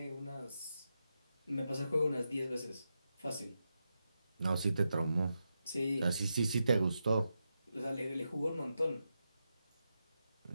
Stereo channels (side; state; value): both; inverted; correlation -0.87